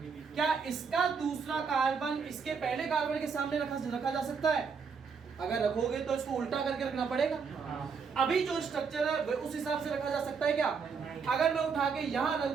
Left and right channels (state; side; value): quieter; left; 5.8 dB